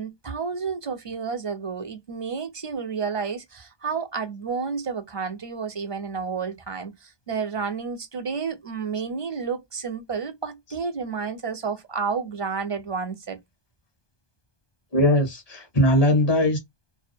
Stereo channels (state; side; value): late; right; 1.2 ms